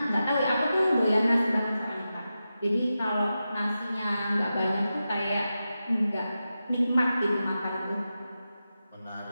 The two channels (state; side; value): inverted; both; correlation -0.91